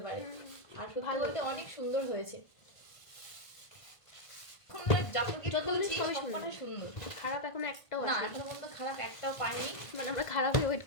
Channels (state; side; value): late; right; 1.5 ms